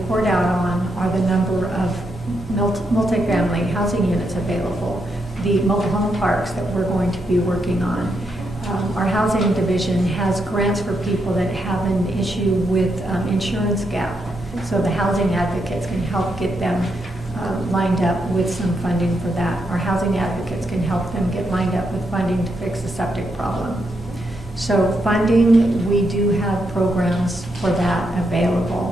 out on are the number of multifamily housing units available, the mobile home parks that we're going to be working on. Our housing division has grants for people that have an issue with insurance gap. So the housing advocates can help get them lined up with some funding for that. Our housing advocates can help them get lined up with funding to fix the septic problem. So funding, we do have programs for that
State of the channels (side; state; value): both; normal; correlation 0.81